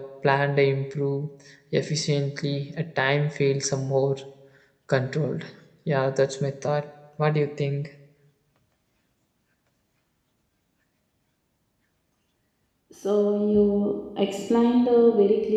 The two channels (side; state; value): both; identical; correlation 1.00